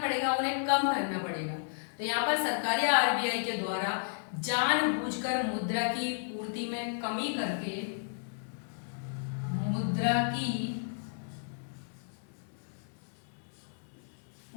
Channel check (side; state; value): right; silent; digital silence